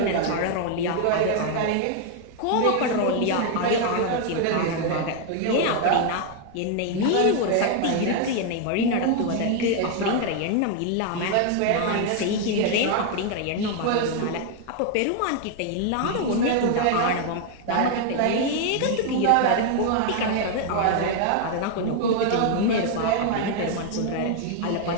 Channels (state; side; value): different; both; correlation 0.00